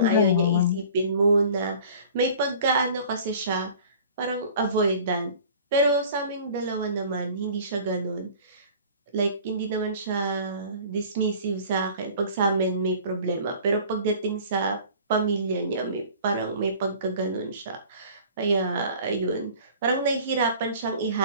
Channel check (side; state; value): both; inverted; correlation -0.46